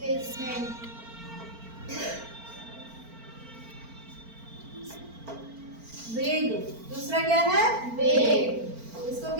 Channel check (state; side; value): late; left; 4.4 ms